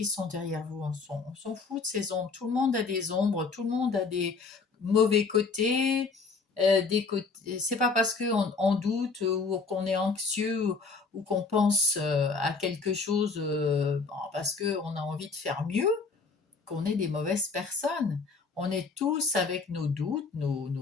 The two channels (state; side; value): quieter; right; 4.5 dB